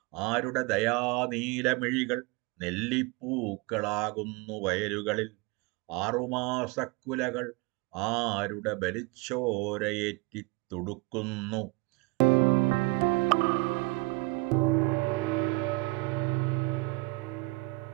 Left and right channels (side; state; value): left; quieter; 26.1 dB